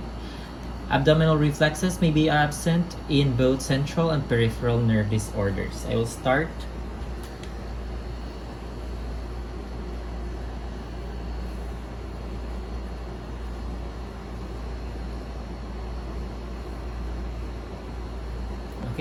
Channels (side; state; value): both; identical; correlation 1.00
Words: Abdominal reflexes may be absent in both central and peripheral nerve disorders. I will start.